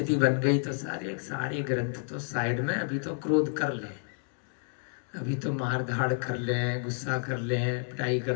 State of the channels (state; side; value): silent; right; 56 dB below the other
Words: बन गई तो सारे ग्रंथ तो साइड में, अभी तो क्रोध कर ले, अभी तो मार धाड़ कर लें, गुस्सा कर लें, पिटाई